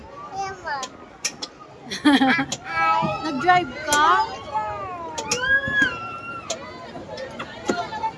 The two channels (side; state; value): both; identical; correlation 1.00